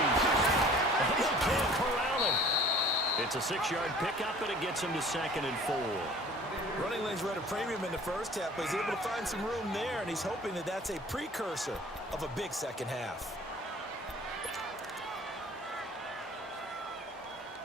And they can't corral him. It's a 6-yard pickup, and it gets him to 2nd and 4. Running lanes were at a premium in the first half, but he's able to find some room there, and he's hoping that that's a precursor of a big second half.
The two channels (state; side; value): normal; both; correlation 0.48